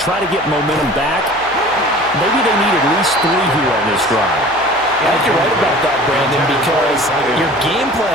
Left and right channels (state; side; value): noise; left; hum, 24 dB below the sound